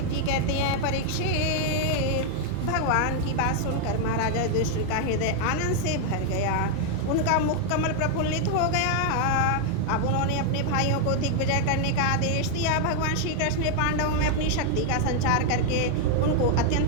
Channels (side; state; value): both; different; correlation 0.00